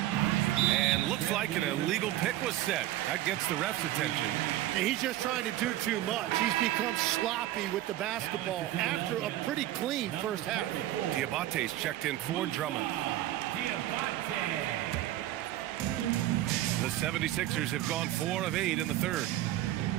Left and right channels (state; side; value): quieter; left; 14.3 dB